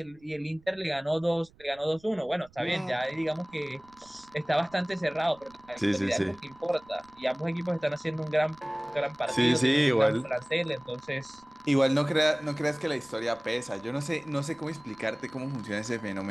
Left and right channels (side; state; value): right; noise; rumble, 27 dB below the sound